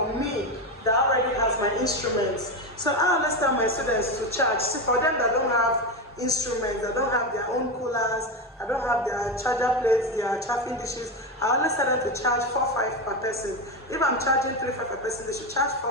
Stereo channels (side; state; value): both; normal; correlation 0.15